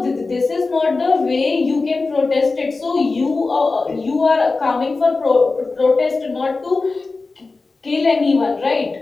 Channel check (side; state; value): right; quieter; 3.8 dB